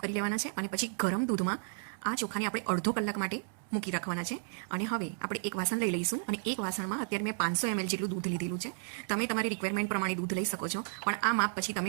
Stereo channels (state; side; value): silent; left; digital silence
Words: કરી લેવાના છે. અને પછી ગરમ દૂધમાં આ ચોખાને આપણે અડધો કલાક માટે મૂકી રાખવાના છે. અને હવે આપણે એક વાસણ લઈ લઈશું અને એક વાસણમાં અત્યારે મેં 500 ml જેટલું દૂધ લીધેલું છે. તમે તમારી રિક્વાયરમેન્ટ પ્રમાણે દૂધ લઈ શકો છો, પણ આ માપ પછી